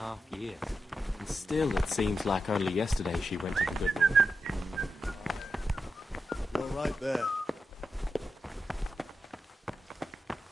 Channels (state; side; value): normal; both; correlation 0.88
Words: years. And still it seems like only yesterday she went to the good Lord. You're right there.